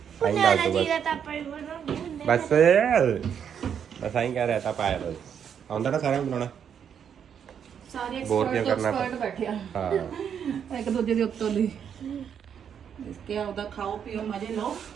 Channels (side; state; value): left; quieter; 8.1 dB